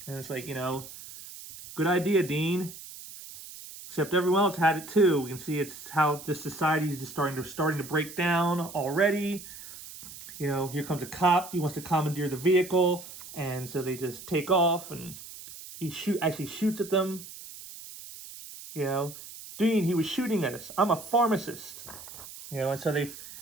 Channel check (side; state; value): right; noise; hiss, 14 dB below the sound